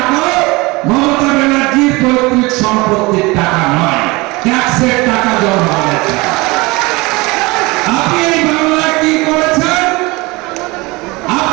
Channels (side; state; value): left; quieter; 23.6 dB